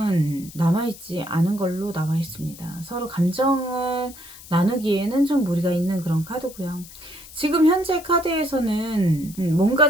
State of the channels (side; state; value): left; noise; hiss, 18 dB below the sound